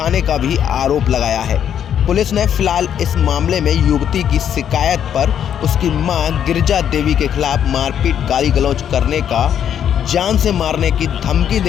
का भी आरोप लगाया है। पुलिस ने फिलहाल इस मामले में युवती की शिकायत पर उसकी मां गिरिजा देवी के खिलाफ मारपीट गाली गलौज करने का, जान से मारने की धमकी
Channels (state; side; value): quieter; right; 9.2 dB